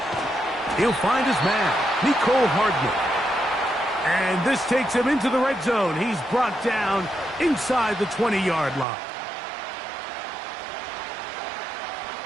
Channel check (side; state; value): left; drops out; at 8.8 s